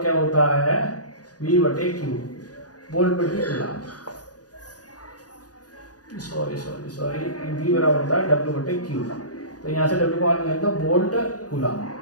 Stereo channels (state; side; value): late; right; 0.68 ms